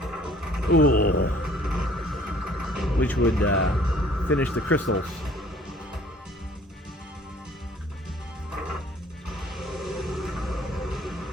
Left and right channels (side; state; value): both; normal; correlation 0.55